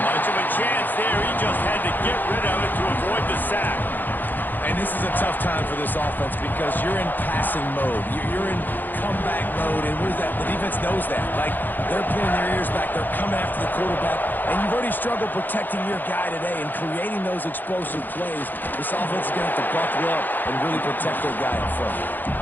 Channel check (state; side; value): late; right; 0.089 ms